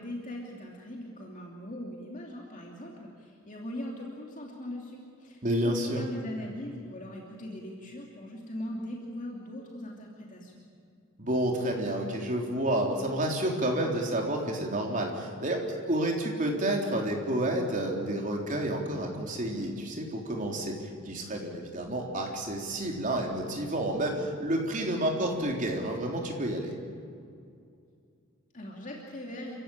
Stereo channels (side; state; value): both; normal; correlation 0.32